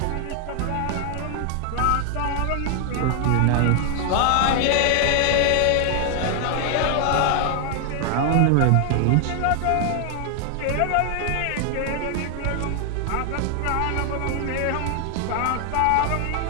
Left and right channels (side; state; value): both; different; correlation 0.00